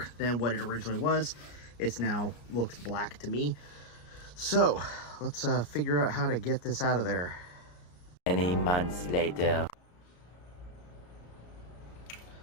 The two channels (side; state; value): right; late; 34 ms